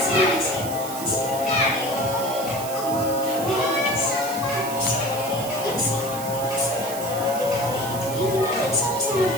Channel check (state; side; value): noise; right; hiss, 10 dB below the sound